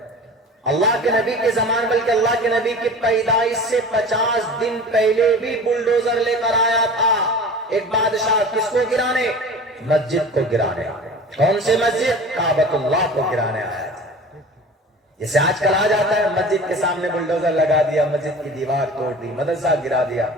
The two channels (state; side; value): normal; both; correlation 0.38